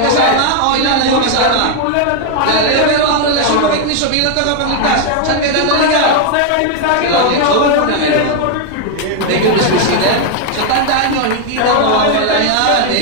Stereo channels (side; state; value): both; different; correlation 0.00